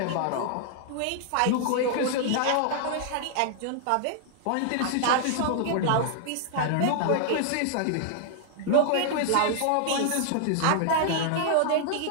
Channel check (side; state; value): both; different; correlation -0.01